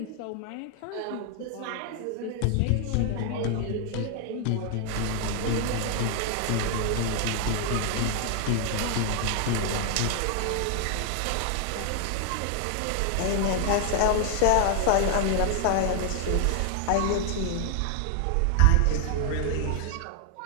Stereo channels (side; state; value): both; different; correlation 0.00